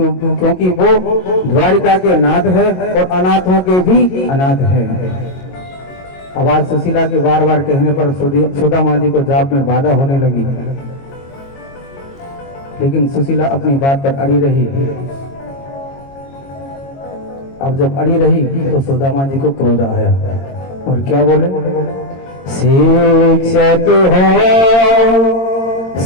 वो द्वारिका के नाथ है और अनाथों के भी अनाथ है। आवाज सुशीला के बार बार कहने पर सुदामा जी को जाप में बाधा होने लगी, लेकिन सुशीला अपनी बात पर अड़ी रही। अब जब अड़ी रही तो सुदामा जी को क्रोध आया और क्या बोले? शिक्षक हो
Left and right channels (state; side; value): late; right; 22 ms